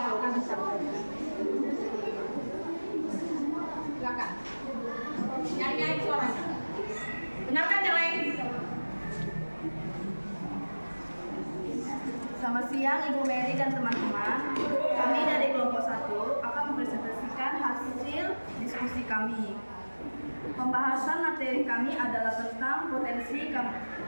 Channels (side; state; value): both; inverted; correlation -1.00